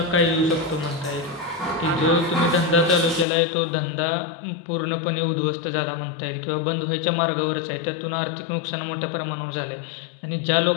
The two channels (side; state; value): right; drops out; at 3.2 s